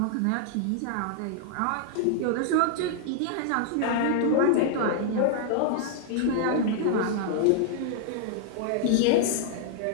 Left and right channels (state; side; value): different; both; correlation -0.01